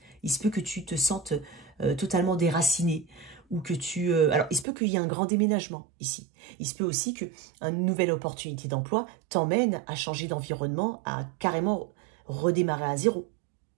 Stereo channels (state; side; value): drops out; left; at 4.7 s